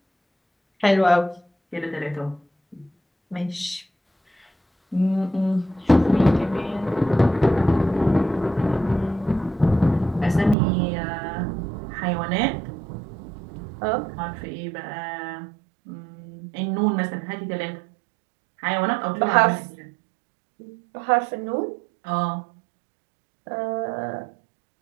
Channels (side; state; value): left; drops out; at 10.6 s